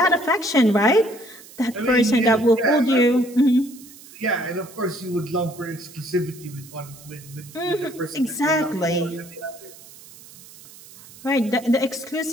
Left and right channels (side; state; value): right; noise; hiss, 20 dB below the sound